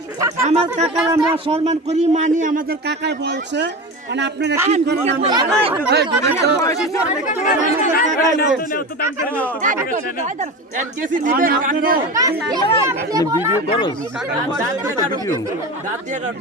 কাকা আমার কাকার আমরা সম্মান করি মানি আমাদের কাকায় বলছে মানে আপনারা কি করেন আমরা ভিডিও করো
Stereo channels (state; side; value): normal; both; correlation 0.27